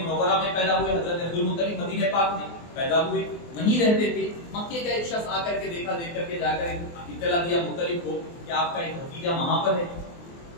منورہ میں پیدا ہوئے، حضرت عبد المطلب مدینہ پاک میں پیدا ہوئے، وہیں رہتے تھے۔ مکے کا ایک شخص آ کر کے دیکھا، دیکھ کر کے جا کر اطلاع دیا مطلب کو کہ آپ کا ایک بھتیجا وہاں پر ہے،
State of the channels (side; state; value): right; late; 24 ms